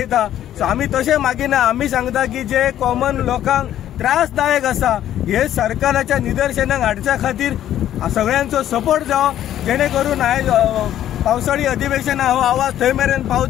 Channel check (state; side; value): quieter; right; 11.7 dB